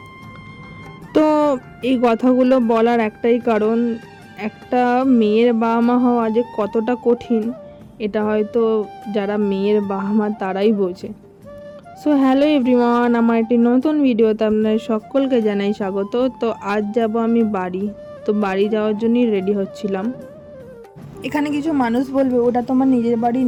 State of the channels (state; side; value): identical; both; correlation 1.00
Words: তো এই কথাগুলো বলার একটাই কারণ, একটা মেয়ের বাবা মা হওয়া যে কতটা কঠিন এটা হয়তো যারা মেয়ের বাবা মা তারাই বোঝে। সো হ্যালো এভরিওয়ান, আমার একটি নতুন ভিডিওতে আপনাদের সকলকে জানাই স্বাগত। তো আজ যাব আমি বাড়ি। তো বাড়ি যাওয়ার জন্যই রেডি হচ্ছিলাম। এখানে কিছু মানুষ বলবে ওটা তোমার নিজের বাড়ি